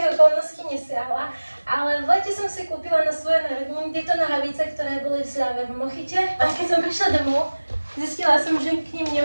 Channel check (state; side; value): inverted; both; correlation -1.00